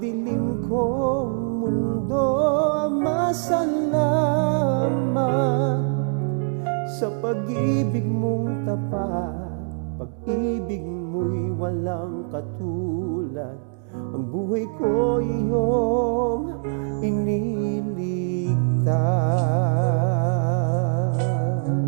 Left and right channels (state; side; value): silent; left; digital silence